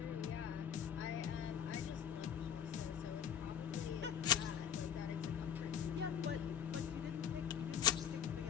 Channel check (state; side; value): quieter; right; 8.8 dB